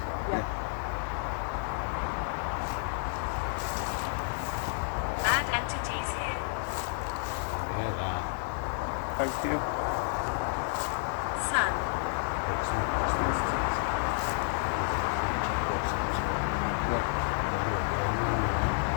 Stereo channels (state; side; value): silent; right; 57 dB below the other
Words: well. Yeah. Bad entities here. Yeah, that. Thank you. Sun. It's not just instances. There's a creature of some sort. Yeah. Whether it be a man or